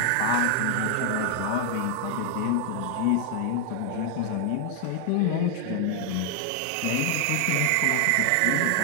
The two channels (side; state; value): both; different; correlation 0.00